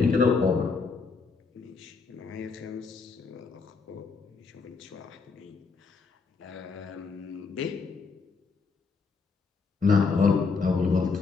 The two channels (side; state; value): right; quieter; 4.7 dB